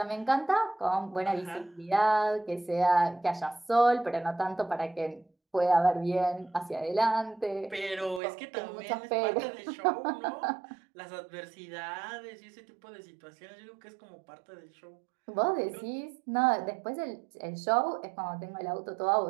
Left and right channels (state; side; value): drops out; left; at 8.2 s